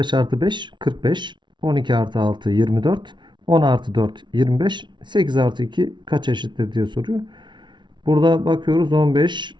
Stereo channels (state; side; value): late; left; 0.23 ms